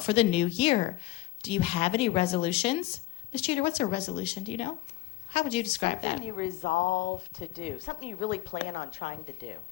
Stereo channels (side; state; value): right; quieter; 16.2 dB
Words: for the new year? Do you have any resolutions?" Ms. Jeter, what's a resolution? Do you know? How would you describe Something that? you resolve to do. Something you really plan on trying to do